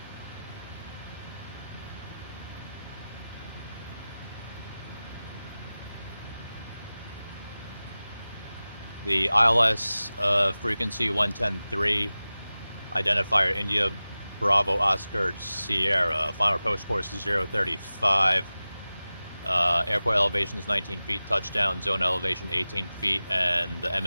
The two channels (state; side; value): inverted; both; correlation -0.96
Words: The ILS frequency 110.3, identifier India Bravo Oscar Sierra, final approach course 035. Airport elevation is 19 feet, touchdown zone elevation 18 feet, and the